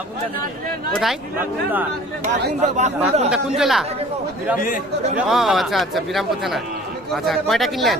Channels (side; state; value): both; normal; correlation 0.48